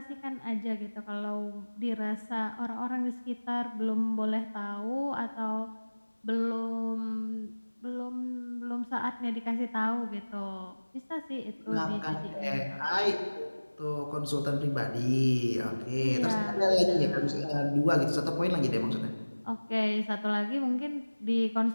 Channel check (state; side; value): inverted; both; correlation -1.00